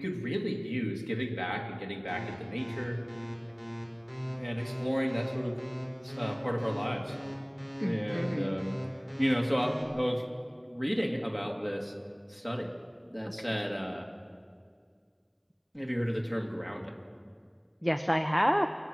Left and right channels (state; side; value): identical; both; correlation 1.00